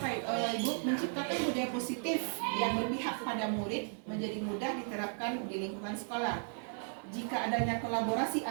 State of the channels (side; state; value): left; silent; 54 dB below the other